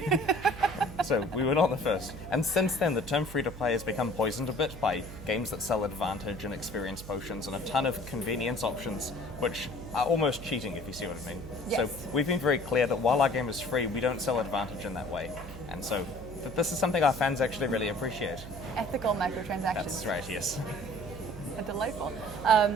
So we were not the first. And since then, the term free-to-play has become poisoned a bit by games that sell advantage and experience potions and a ton of convenience options, which are almost cheating, if you see what I mean. Yes. So we've been very clear that while our game is free, we don't sell advantage in that way. And so this is something our fans actually really appreciate. Ethical microtransactions. That's right, yes. Delightful.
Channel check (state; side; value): noise; right; hum, 13 dB below the sound